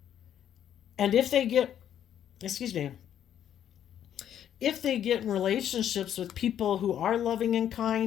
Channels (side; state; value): right; quieter; 10.1 dB